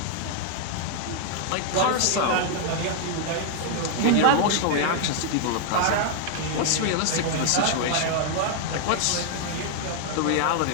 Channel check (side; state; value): both; different; correlation 0.00